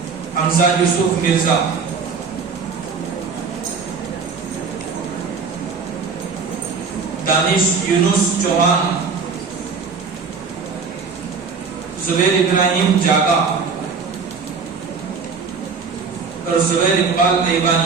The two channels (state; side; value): quieter; left; 5.2 dB